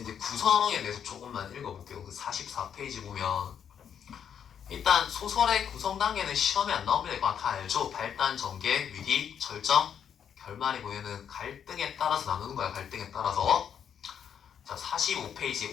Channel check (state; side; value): quieter; right; 8.3 dB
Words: 이제 구성에 대해서 조금만 읽어볼게요. 그 44페이지 보면 일단 소설의 구성 단계는 시험에 안 나옵니다. 이거 다 알죠? 발단, 전개, 위기, 절정, 결말이고 얘는 갈등에 따라서 나누는 거야. 갈등에 따라서. 자,